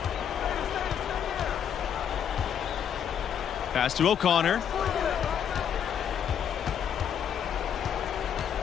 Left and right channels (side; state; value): right; quieter; 8.6 dB